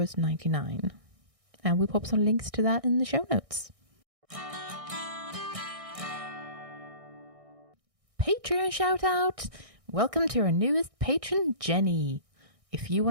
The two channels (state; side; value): late; left; 1.6 ms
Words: And we pop some links to that in the show notes. Patreon shout out! Welcome to our newest patron, Jenny. If you